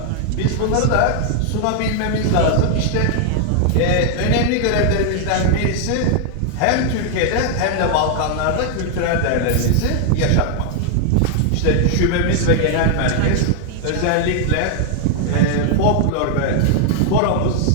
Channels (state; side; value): different; both; correlation 0.00